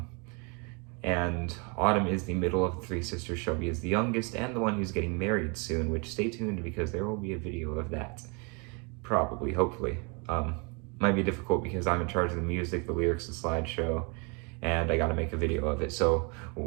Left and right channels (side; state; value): left; quieter; 32.7 dB